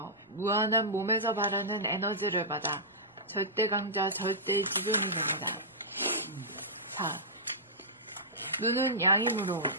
무한한 몸에서 발하는 에너지를 받아 절대강자 절대지존이 됩니다. 4. 눈은 양이므로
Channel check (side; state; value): both; normal; correlation -0.16